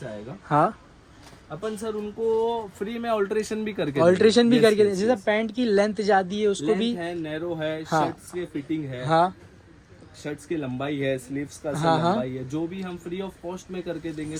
आएगा, हाँ, अपन सर उनको फ्री में ऑल्ट्रेशन भी करके ऑल्ट्रेशन भी Yes, करके yes, जैसे yes. पैंट की लेंथ ज्यादा है उसको भी। Length है, नैरो है, हाँ। शर्ट्स की फिटिंग है। हाँ, शर्ट्स की लंबाई है, स्लीव्स का हाँ, हाँ। लंबाई है, जो भी हम फ्री ऑफ कॉस्ट में करके देंगे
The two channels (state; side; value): identical; both; correlation 1.00